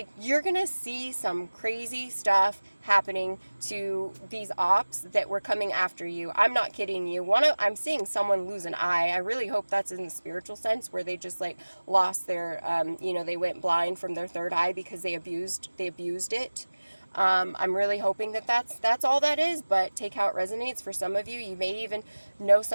you're going to see some crazy stuff happening to these ops that were coming after you. I'm not kidding you. I'm seeing someone lose an eye. I really hope that's in the spiritual sense, where they just, like, lost their, you know, they went blind from their third eye because they abused it. I'm really hoping that that's all that is, but take how it resonates. For some of you, you may even know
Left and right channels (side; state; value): both; inverted; correlation -1.00